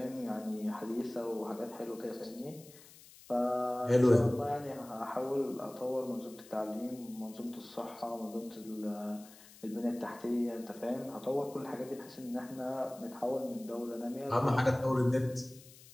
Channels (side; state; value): left; noise; hiss, 21 dB below the sound